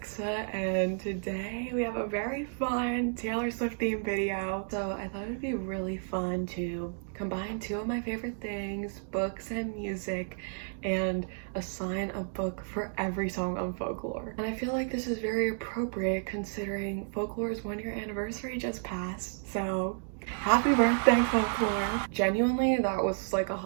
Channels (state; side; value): silent; left; digital silence